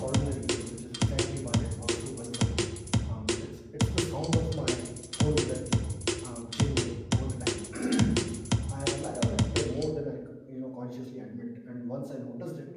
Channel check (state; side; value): identical; both; correlation 1.00